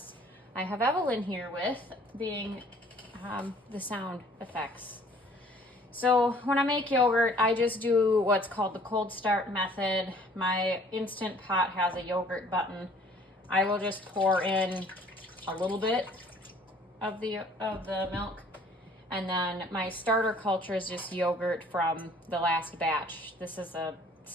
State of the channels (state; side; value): normal; both; correlation 0.56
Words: I have Evelyn here with being the sound effects. So when I make yogurt, I just do what's called the cold start method. My Instant Pot has a yogurt button. I will just pour in a little bit of the milk. And then my starter culture is just yogurt from the last batch. This is a